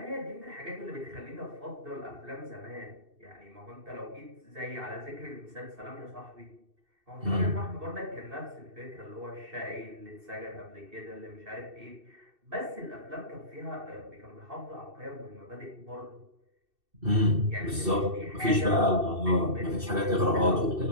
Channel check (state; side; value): late; left; 2.7 ms